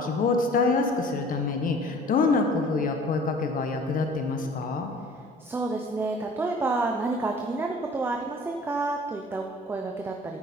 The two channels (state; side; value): normal; both; correlation 0.48